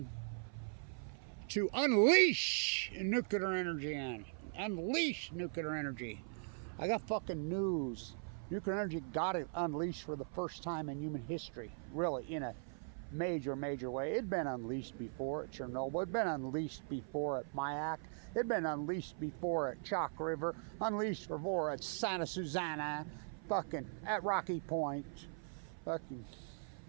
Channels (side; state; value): left; silent; 51 dB below the other